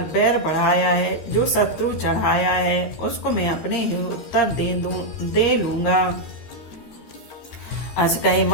बैर बढ़ाया है, जो शत्रु चढ़ाया है उसको मैं अपने ही उत्तर दे लूंगा। अस कही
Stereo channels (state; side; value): late; right; 13 ms